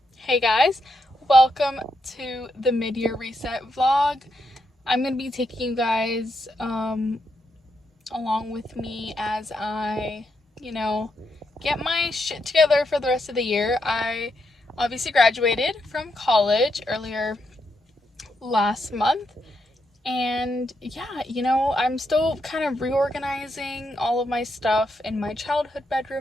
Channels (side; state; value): both; normal; correlation 0.81